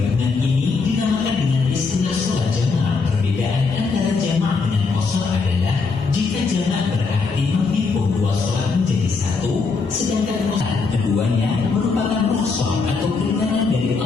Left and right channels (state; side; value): quieter; right; 4.5 dB